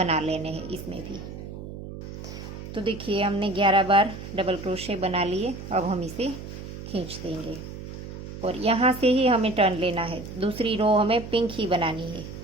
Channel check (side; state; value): right; noise; hum, 11 dB below the sound